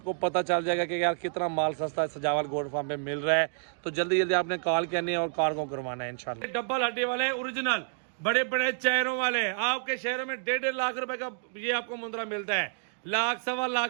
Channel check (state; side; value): silent; left; digital silence